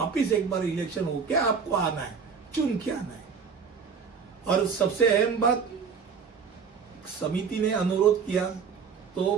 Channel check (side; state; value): left; quieter; 6.0 dB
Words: एक बार इलेक्शन होके आपको आना है, चुन के आना है। और सबसे अहम बात, समिति ने अनुरोध किया तो